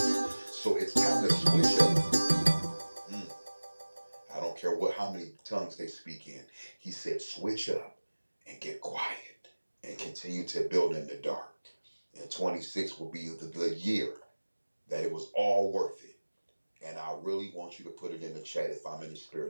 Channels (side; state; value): both; inverted; correlation -1.00